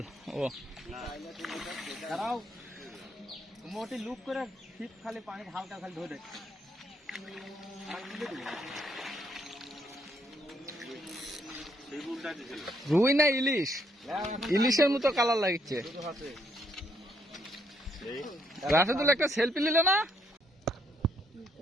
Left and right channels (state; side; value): normal; both; correlation 0.72